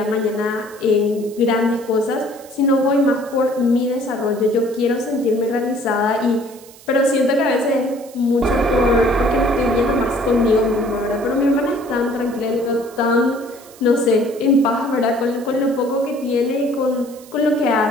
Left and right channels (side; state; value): right; noise; hiss, 22 dB below the sound